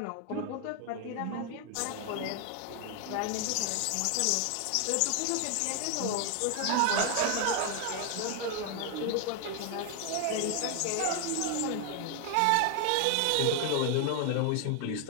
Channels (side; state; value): both; different; correlation 0.00